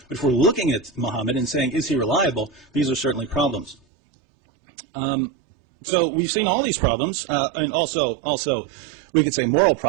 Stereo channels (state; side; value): drops out; left; at 3.8 s